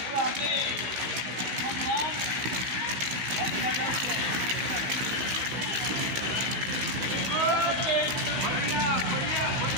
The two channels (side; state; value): left; late; 15 ms